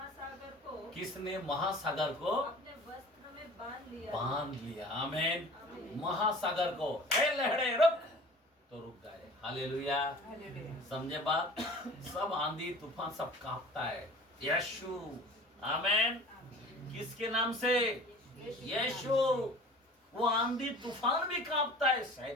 किसने महासागर को अपने वस्त्र में बांध लिया? आमीन। महासागर को, हे लहरे रुक, तो रुक गए। हालेलुया। समझे बात? सब आंधी तूफान सब कांपता है यीशु। आमीन। किसके नाम से? यीशु। वो आंधी तूफान भी कांपता है।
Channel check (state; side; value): normal; both; correlation 0.43